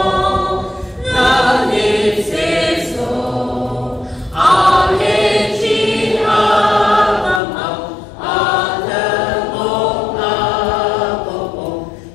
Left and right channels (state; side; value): drops out; right; at 7.4 s